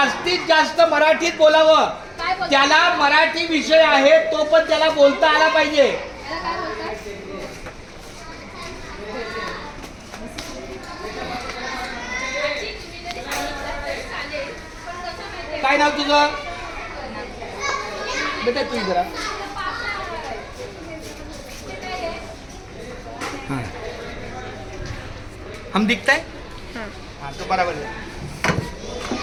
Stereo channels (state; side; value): identical; both; correlation 1.00